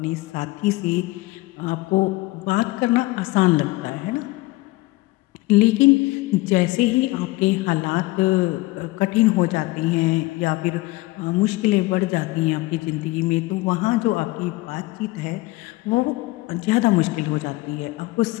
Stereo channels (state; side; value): quieter; right; 20.9 dB